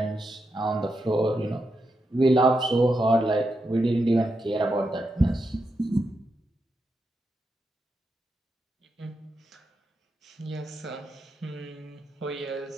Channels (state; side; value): normal; both; correlation 0.85